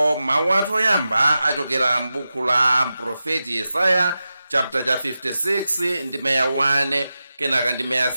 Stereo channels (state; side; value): inverted; both; correlation -0.92